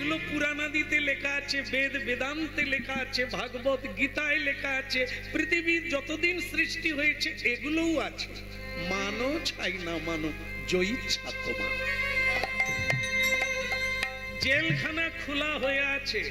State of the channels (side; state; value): both; identical; correlation 1.00